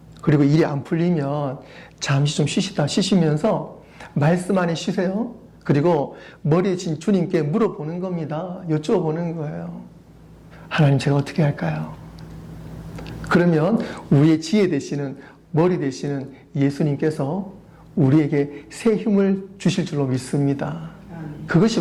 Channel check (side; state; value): both; identical; correlation 1.00